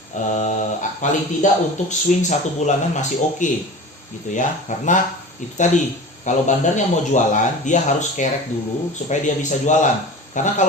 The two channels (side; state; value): both; normal; correlation 0.35